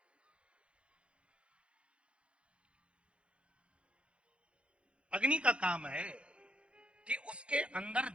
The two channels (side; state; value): left; late; 0.059 ms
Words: अग्नि का काम है कि उसके अंदर